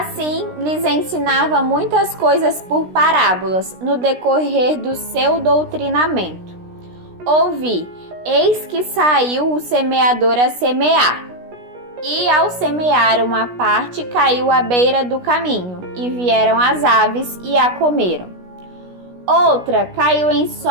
lhes ensinava muitas coisas por parábolas, no decorrer do seu doutrinamento. Ouvi, eis que saiu o semeador a semear. E ao semear uma parte, caiu à beira do caminho, e vieram as aves e a comeram. Outra caiu em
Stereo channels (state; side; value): late; left; 16 ms